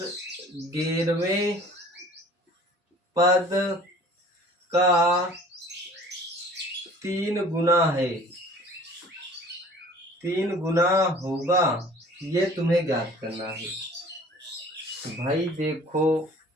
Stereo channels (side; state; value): both; normal; correlation 0.48